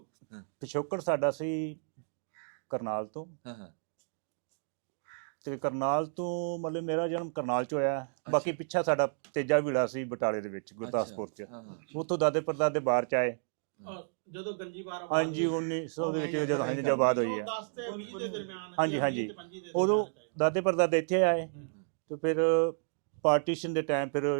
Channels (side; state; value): left; silent; digital silence